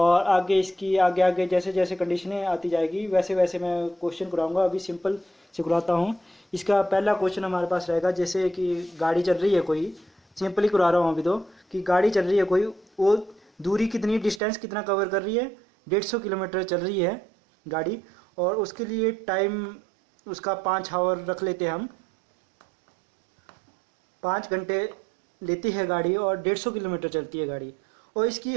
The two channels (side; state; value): left; drops out; at 14.4 s